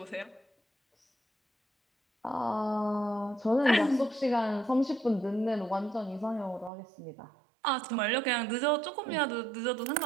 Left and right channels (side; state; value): left; drops out; at 6.7 s